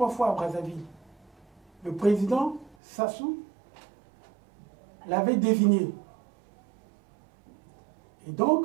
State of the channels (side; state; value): left; drops out; at 2.8 s